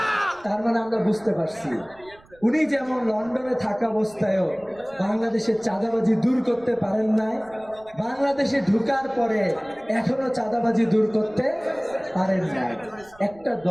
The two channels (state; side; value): noise; right; rumble, 27 dB below the sound